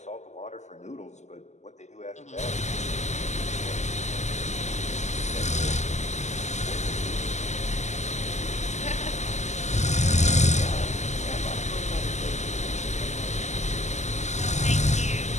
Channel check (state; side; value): late; right; 0.33 ms